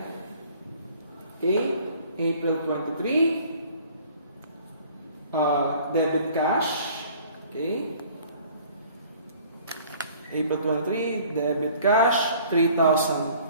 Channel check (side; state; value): both; inverted; correlation -0.53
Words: Okay? April 23. Debit cash. Okay? April 23, debit cash,